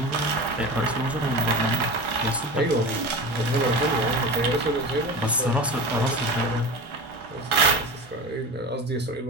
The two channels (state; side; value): normal; both; correlation 0.30